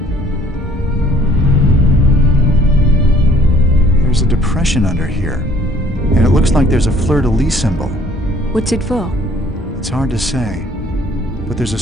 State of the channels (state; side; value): normal; both; correlation 0.58